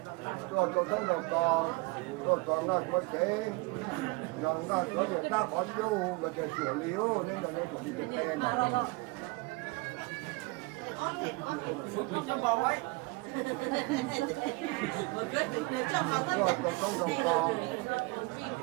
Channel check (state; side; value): quieter; left; 25.2 dB